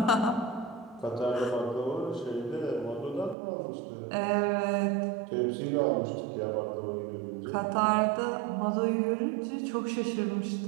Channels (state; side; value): drops out; left; at 3.4 s